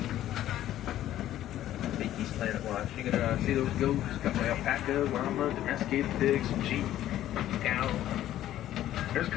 Rafiki's Planet Watch. You can see those goats, got my alpaca, llama, domesticated pigs, some sheep, cow. There's a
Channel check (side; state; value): right; quieter; 12.9 dB